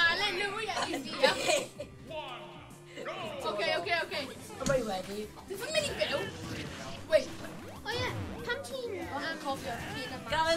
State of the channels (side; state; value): both; identical; correlation 1.00